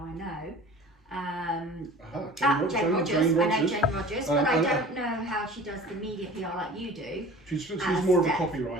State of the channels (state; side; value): normal; both; correlation 0.42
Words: know. Jane Rogers. I know Jane Rogers, but I don't know how she does the media PR like you do. She's more of a